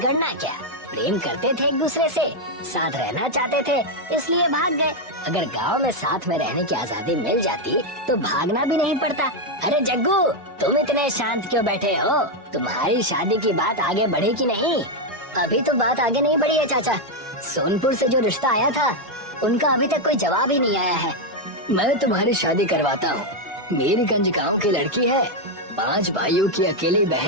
क्या? प्रेम करते थे एक दूसरे से, साथ रहना चाहते थे, इसलिए भाग गए। अगर गांव में साथ में रहने की आजादी मिल जाती तो भागना भी नहीं पड़ता। अरे जग्गू, तुम इतने शांत क्यों बैठे हो? तुम्हारी शादी की बात आगे बढ़ी कि नहीं? अभी तो बात आगे नहीं बढ़ी है चाचा। सोनपुर से जो रिश्ता आया था उनका अभी तक कोई जवाब ही नहीं आया है। मैं तुम्हारी शादी करवाता हूँ। मेरे गंज गांव की लड़की है, 5 भाइयों की अकेली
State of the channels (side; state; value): left; late; 1.6 ms